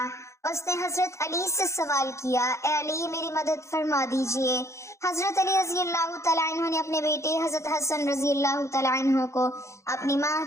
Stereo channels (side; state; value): right; late; 0.14 ms